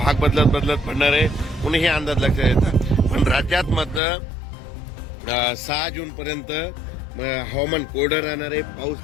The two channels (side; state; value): right; drops out; at 4.0 s